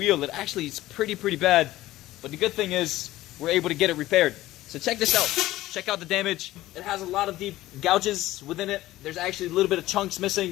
It actually is pretty bad, but the good thing is we're able to get it repaired. So check this out. Check out the damage. It has a lot of deep gouges within it. There's actually a little bit of chunks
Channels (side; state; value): right; quieter; 16.1 dB